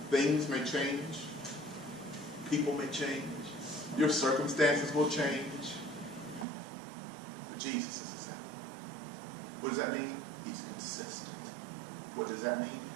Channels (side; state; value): left; drops out; at 6.5 s